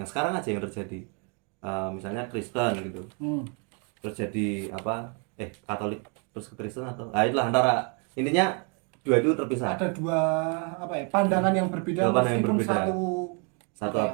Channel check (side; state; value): left; quieter; 35.6 dB